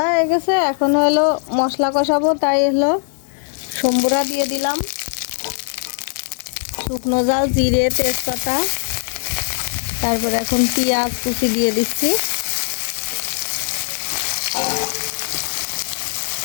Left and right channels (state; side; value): silent; right; digital silence